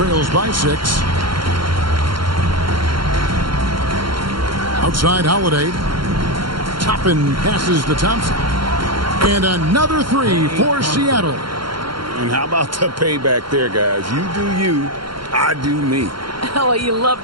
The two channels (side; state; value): left; late; 0.73 ms